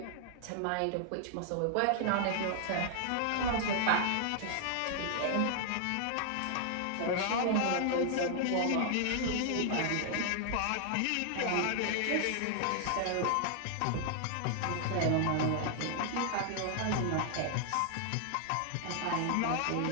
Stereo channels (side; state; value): both; different; correlation 0.00